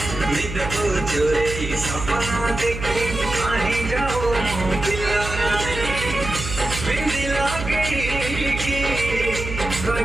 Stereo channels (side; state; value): right; noise; hum, 7 dB below the sound